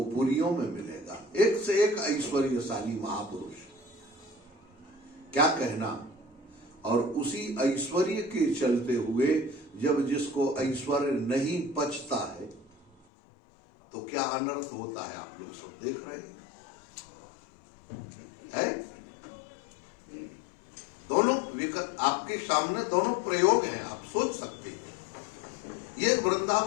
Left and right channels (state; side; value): drops out; right; at 13.1 s